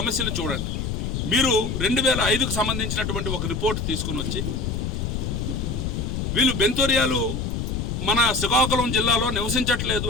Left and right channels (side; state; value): left; noise; rumble, 2 dB below the sound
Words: చూడండి. మీరు 2005కు సంబంధించినటువంటి ఒక రిపోర్ట్ తీసుకొని వచ్చి వీళ్ళు బెంతొరియాలు మన శ్రీకాకుళం జిల్లాలో నివసించట్లేదు